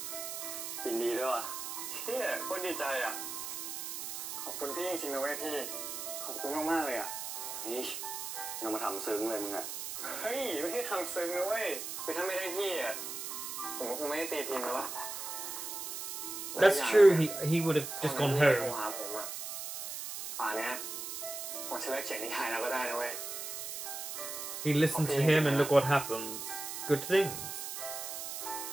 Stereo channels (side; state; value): right; noise; hiss, 6 dB below the sound